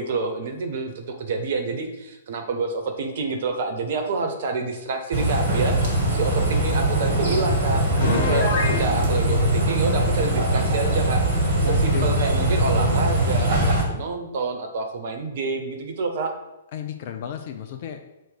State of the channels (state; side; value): inverted; both; correlation -0.41